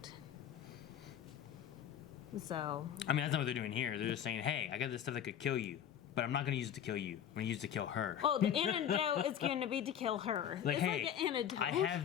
So... I mean, that's not what they're doing here. They're just saying, hey, I got this stuff that could kill you, but I'm not going to use it to kill you. I'm going to use it to kill her. Oh, the antidote is going to be to kill her. Like, it's hey, like an antidote. I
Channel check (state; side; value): quieter; right; 9.6 dB